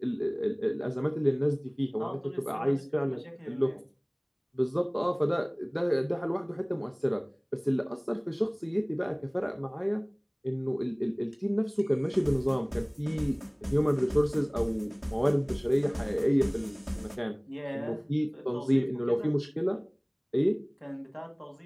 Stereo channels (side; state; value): both; identical; correlation 1.00